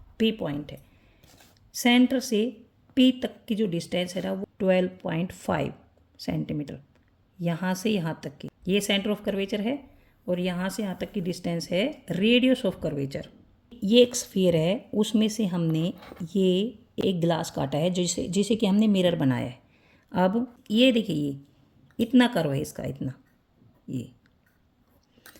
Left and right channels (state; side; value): identical; both; correlation 1.00